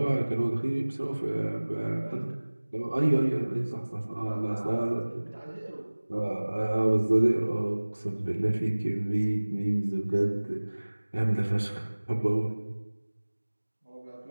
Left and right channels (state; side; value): inverted; both; correlation -1.00